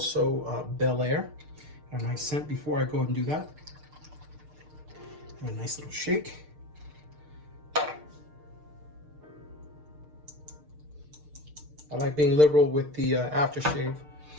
Bel Air. And a nice scent before I go ahead and do that. And a nice little shake. I like being liberal with the aftershave,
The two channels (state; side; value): late; left; 6.6 ms